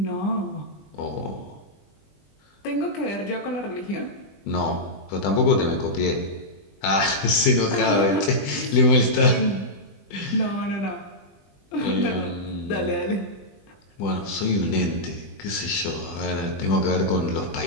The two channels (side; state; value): right; late; 20 ms